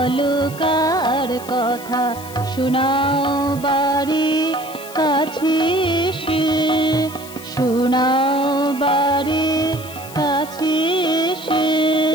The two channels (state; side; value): noise; left; hiss, 16 dB below the sound